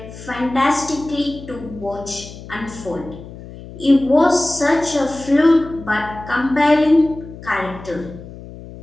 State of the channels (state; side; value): noise; left; hum, 15 dB below the sound